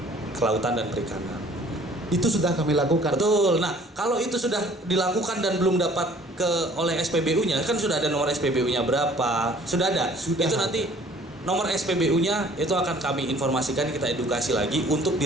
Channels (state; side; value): normal; both; correlation 0.54